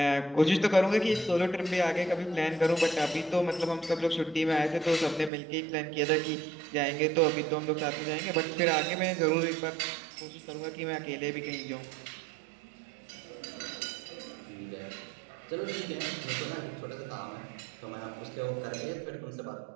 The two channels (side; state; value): left; drops out; at 5.3 s